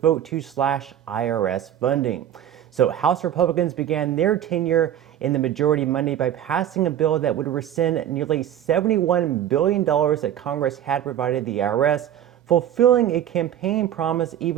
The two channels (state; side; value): quieter; left; 10.8 dB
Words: vote to slash IRS funding. So House Republicans began their tenure in the majority Monday by passing a bill that would rescind nearly $71 billion that Congress had provided the IRS, fulfilling a campaign promise